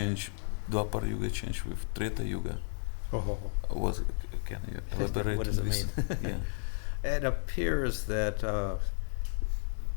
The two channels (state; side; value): silent; right; digital silence